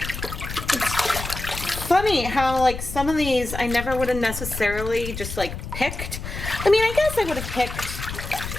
Funny how like some of these I never would have necessarily just like picked. I mean, I guess I would have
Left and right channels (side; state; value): left; noise; rumble, 8 dB below the sound